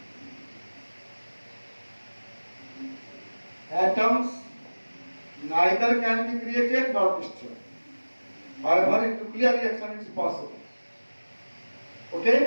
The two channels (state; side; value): inverted; both; correlation -1.00